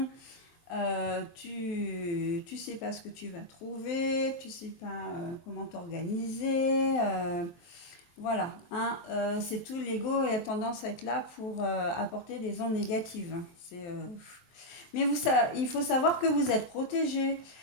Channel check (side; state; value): right; late; 23 ms